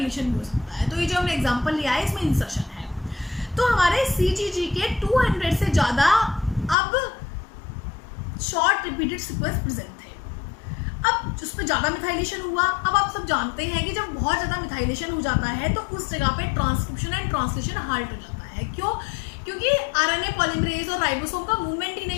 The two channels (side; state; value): right; drops out; at 6.8 s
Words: भी हो सकता है। तो ये जो हमने एग्जांपल लिया है इसमें इंसर्शन है। तो हमारे CGG के 200 से ज़्यादा अब शॉर्ट रिपीटेड सीक्वेंस प्रेजेंट थे। अब उस पर ज़्यादा मिथाइलेशन हुआ। अब आप सब जानते हैं कि जब बहुत ज़्यादा मिथाइलेशन हो जाता है तो उस जगह पे ट्रांसक्रिप्शन एंड ट्रांसलेशन हाल्ट हो जाता है। क्यों? क्योंकि RNA पॉलीमरेज और राइबोसोम का मूवमेंट ही